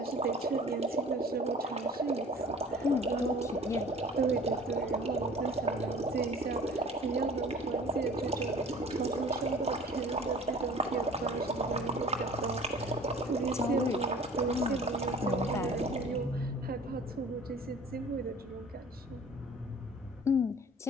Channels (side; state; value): both; normal; correlation 0.47